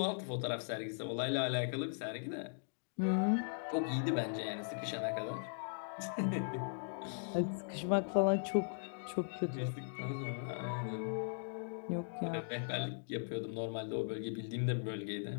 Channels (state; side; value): silent; right; digital silence